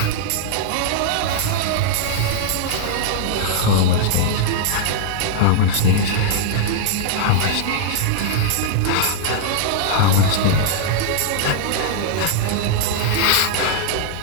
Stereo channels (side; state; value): both; different; correlation -0.01